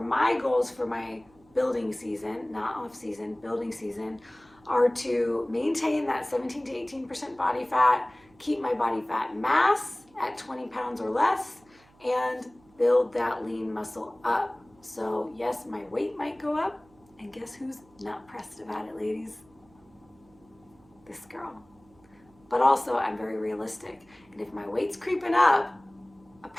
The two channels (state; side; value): noise; right; hum, 30 dB below the sound